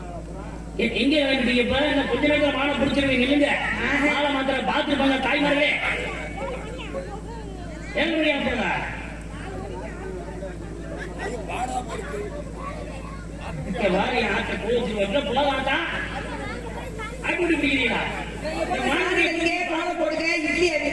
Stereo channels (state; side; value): identical; both; correlation 1.00